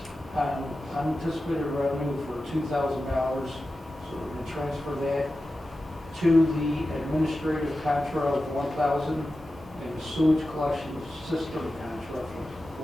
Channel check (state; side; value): normal; both; correlation 0.93